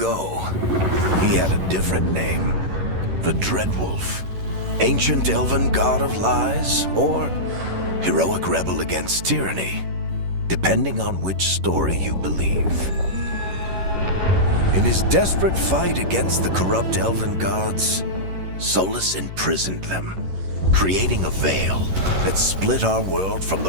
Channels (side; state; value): left; late; 11 ms